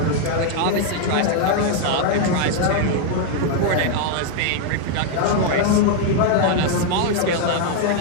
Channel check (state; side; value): different; both; correlation 0.00